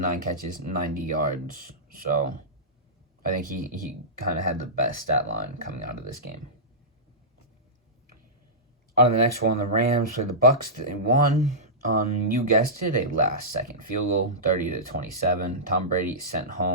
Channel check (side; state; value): both; normal; correlation -0.16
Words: catches, 90 yards. So I think he kind of had the best stat line coming out of this game. On the next one, the Rams played the Bucs. They won. You guessed it, a last-second field goal, 30-27. Tom Brady sent